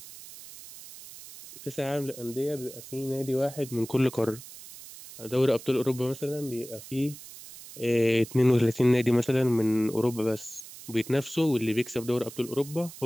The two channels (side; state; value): right; noise; hiss, 16 dB below the sound